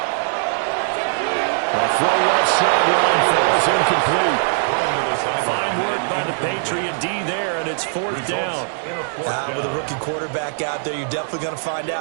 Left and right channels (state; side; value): silent; left; 65 dB below the other